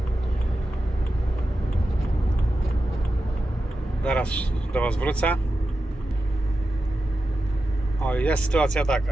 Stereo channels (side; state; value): both; normal; correlation 0.91